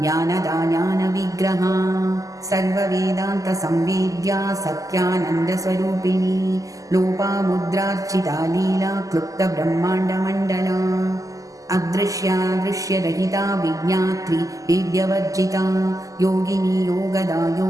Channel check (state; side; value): late; left; 0.17 ms